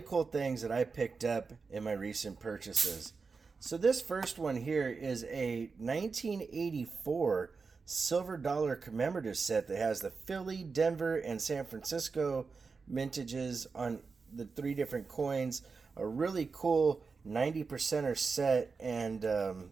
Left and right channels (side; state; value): left; quieter; 4.7 dB